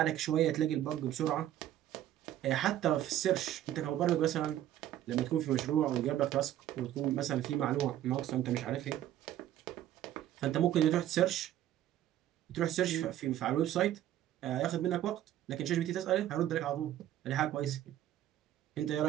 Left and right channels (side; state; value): left; quieter; 12.3 dB